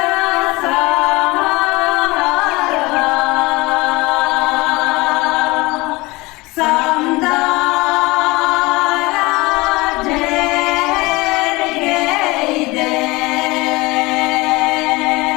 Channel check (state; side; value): quieter; right; 22.6 dB